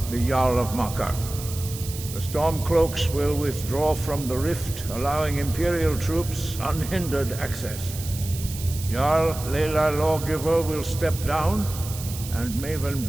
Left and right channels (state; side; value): noise; right; hiss, 11 dB below the sound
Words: the Jarl of Markarth. The Stormcloaks will withdraw from the rift, allowing Imperial troops unhindered access. Jarl Leila Lawgiver will step down, and Maven